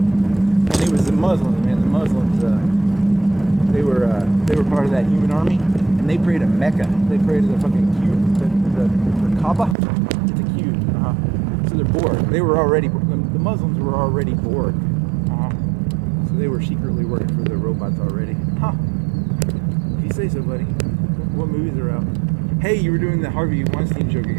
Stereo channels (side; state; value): left; drops out; at 9.8 s